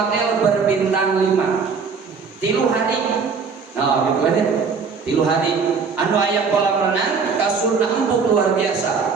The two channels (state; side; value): quieter; left; 5.4 dB